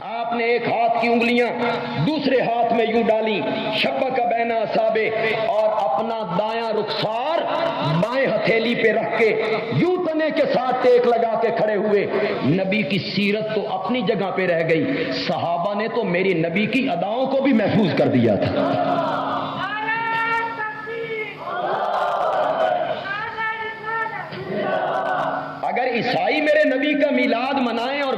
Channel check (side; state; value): both; identical; correlation 1.00